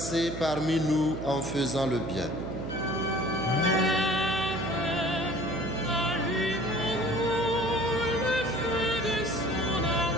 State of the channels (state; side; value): noise; right; hum, 6 dB below the sound